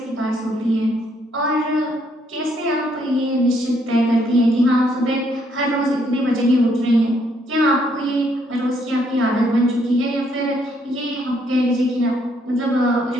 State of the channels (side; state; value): both; normal; correlation 0.70